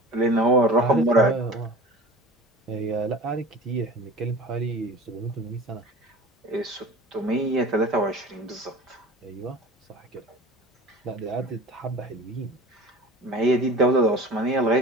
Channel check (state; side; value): normal; both; correlation 0.37